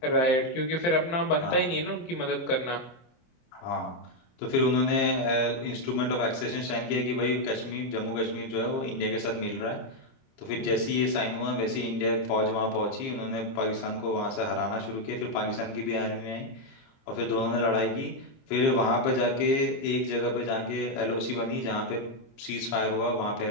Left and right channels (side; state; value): right; late; 25 ms